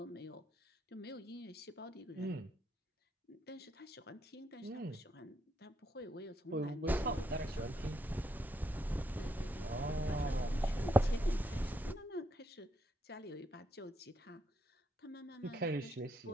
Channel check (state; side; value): normal; both; correlation 0.78